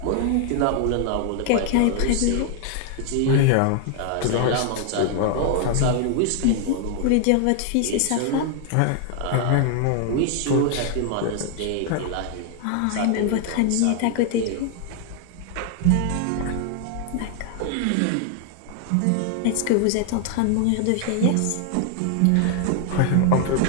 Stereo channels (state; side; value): different; both; correlation 0.00